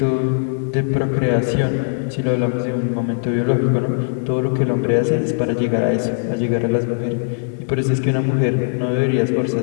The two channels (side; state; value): right; silent; 63 dB below the other